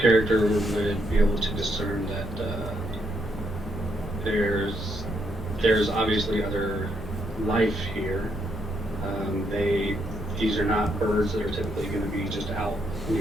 would be able to discern that there's obviously other life here. These are not birds that are typically going to be just out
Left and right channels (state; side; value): normal; both; correlation 0.76